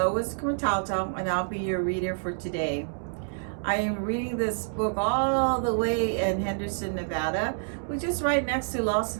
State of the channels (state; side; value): silent; left; digital silence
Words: Quintalto and I'll be your reader for today. I am reading this book all the way in Henderson, Nevada, which is right next to Las